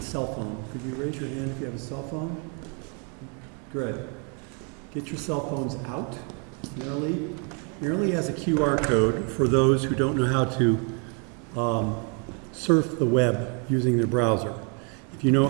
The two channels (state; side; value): quieter; left; 37.2 dB